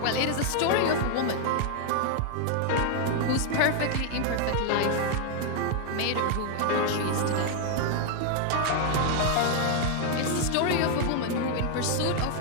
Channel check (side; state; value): both; different; correlation 0.00